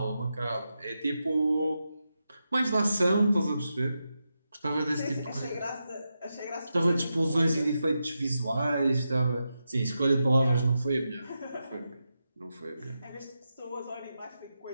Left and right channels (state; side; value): inverted; both; correlation -0.88